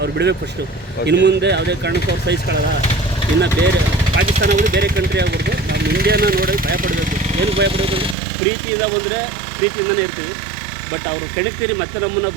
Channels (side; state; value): left; drops out; at 8.2 s